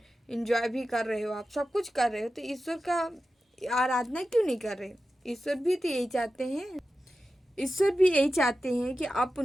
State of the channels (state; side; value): normal; both; correlation 0.92